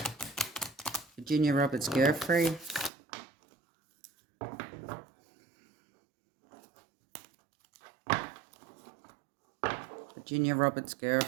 Virginia Roberts Giuffre. Virginia Roberts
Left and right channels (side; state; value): left; drops out; at 2.9 s